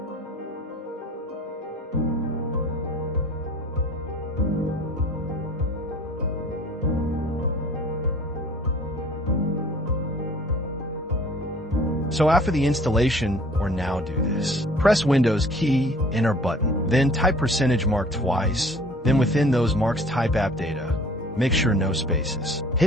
So after the installation, or now do this. Press Windows key, enter button, then type %mark twice, then within those marks type app data. Make sure no spaces.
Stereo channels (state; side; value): normal; both; correlation 0.50